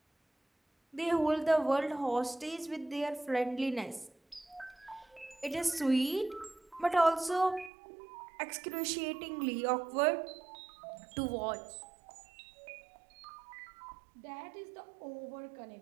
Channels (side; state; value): left; drops out; at 7.7 s